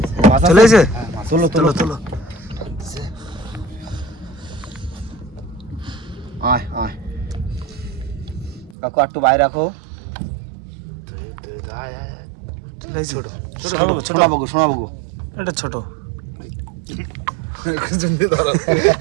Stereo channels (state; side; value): drops out; left; at 8.8 s